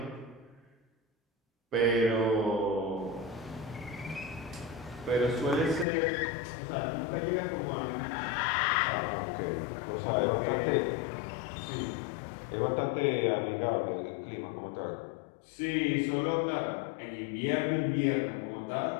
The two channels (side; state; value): right; drops out; at 5.9 s